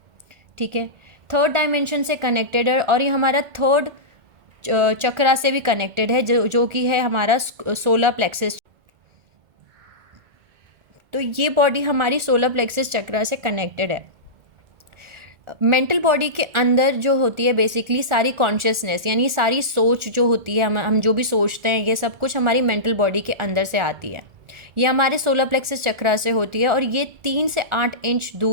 ठीक है। 3rd डायमेंशन से कनेक्टेड है और ये हमारा 3rd चक्रा से भी कनेक्टेड है, जो कि है हमारा सोलर प्लेक्सस। तो ये बॉडी हमारी सोलर प्लेक्सस चक्रा से कनेक्टेड है। मेंटल बॉडी के अंदर जो होती है बेसिकली सारी कॉन्शियसनेस, यानी सारी सोच जो होती है, हम जो भी सोचते हैं, ये सब कुछ हमारी मेंटल बॉडी के अंदर से आती है। ये हमारे सोलर प्लेक्सस चक्रा से होती है और ये 3 से 8 इंच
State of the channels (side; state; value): left; late; 1.4 ms